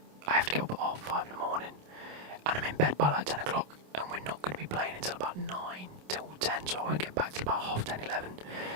have to get up at 5:30 in the morning, and I'm in bed by like 10 o'clock, and we're not going to be playing until about 9 till 10, so I won't get back till about 10:30, 11,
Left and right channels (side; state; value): left; late; 27 ms